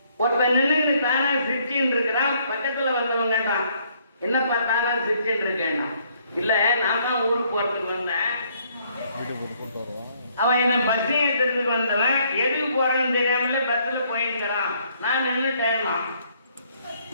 ஒருத்தன் நின்று தானா சிரிச்சுன்னு இருக்கிறான். பக்கத்துல வந்தவங்க கேட்டான், என்னப்பா தானா சிரிச்சுன்னு இருக்கேன்னா, இல்ல நான் தான் ஊருக்கு போறதுக்கு வந்தேன். அவன் என்ன பஸ் ஏற்றத்துக்கு வந்தவன், எதுக்கு போறேன்னு தெரியாமல பஸ்ல போயிருக்கிறான். நான் நின்று டைமா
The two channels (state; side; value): inverted; both; correlation -0.67